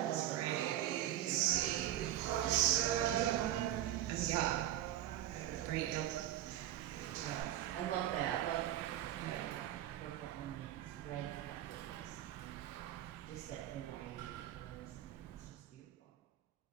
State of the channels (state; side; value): quieter; left; 12.6 dB